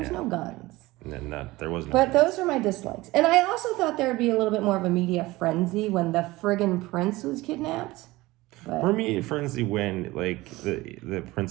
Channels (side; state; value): left; quieter; 19.7 dB